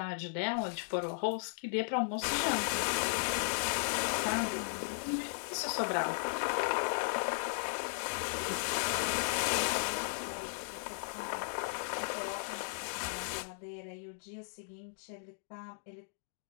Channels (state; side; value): silent; right; digital silence